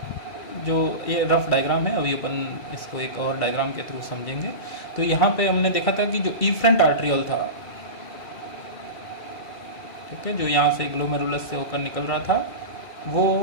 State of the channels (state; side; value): late; right; 2.2 ms